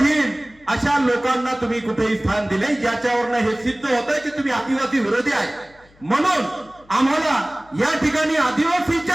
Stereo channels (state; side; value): noise; left; hum, 29 dB below the sound